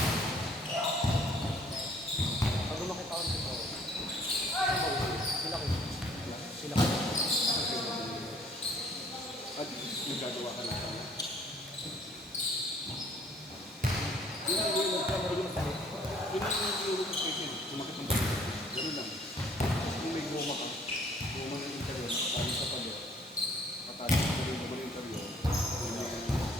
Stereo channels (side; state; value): both; normal; correlation 0.59